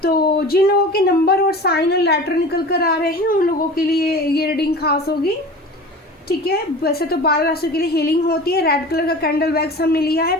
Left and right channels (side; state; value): both; normal; correlation 0.37